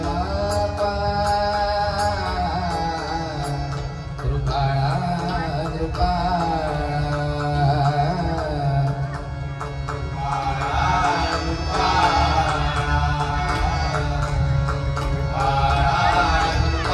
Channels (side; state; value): both; identical; correlation 1.00